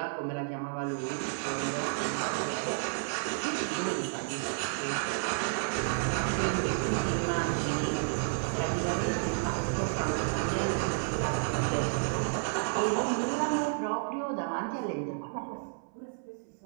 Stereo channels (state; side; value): silent; left; 57 dB below the other